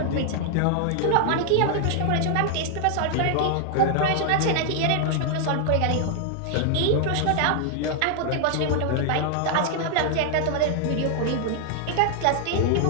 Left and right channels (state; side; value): different; both; correlation 0.00